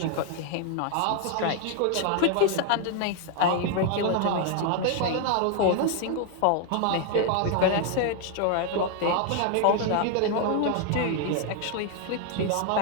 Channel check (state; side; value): different; both; correlation 0.00